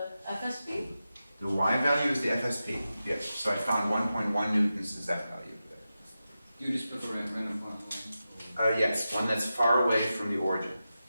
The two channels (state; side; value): inverted; both; correlation -0.92